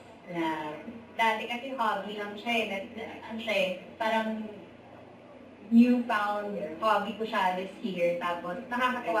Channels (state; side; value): identical; both; correlation 1.00